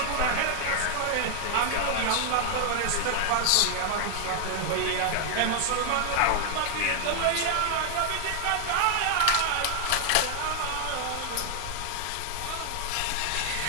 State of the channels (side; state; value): both; different; correlation 0.00